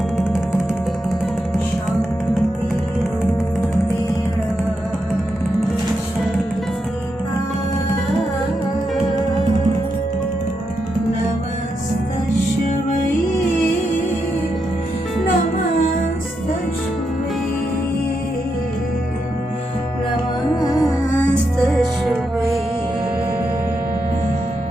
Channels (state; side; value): normal; both; correlation 0.84